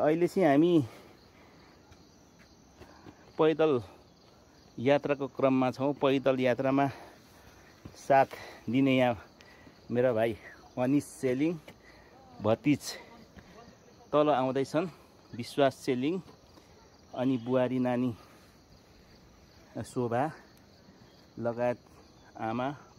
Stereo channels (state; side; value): identical; both; correlation 1.00